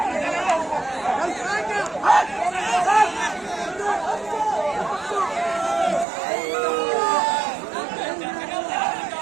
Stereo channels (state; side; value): drops out; left; at 6.1 s